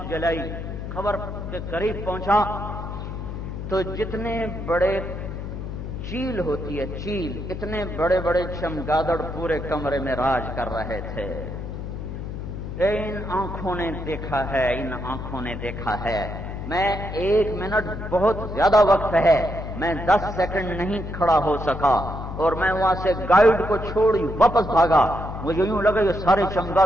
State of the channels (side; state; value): left; noise; hum, 7 dB below the sound